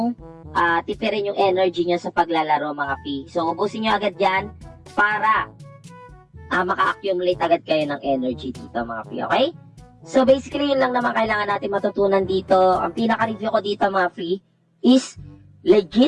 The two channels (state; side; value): identical; both; correlation 1.00